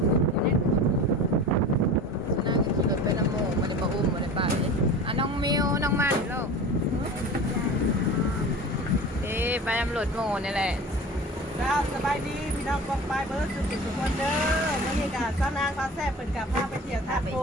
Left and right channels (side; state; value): both; normal; correlation 0.36